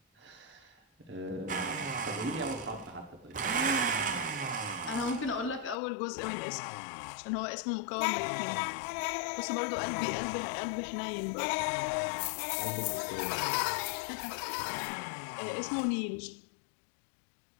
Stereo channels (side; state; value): right; drops out; at 5.8 s